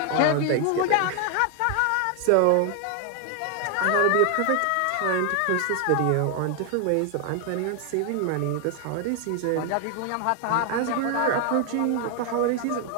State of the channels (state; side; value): different; both; correlation 0.00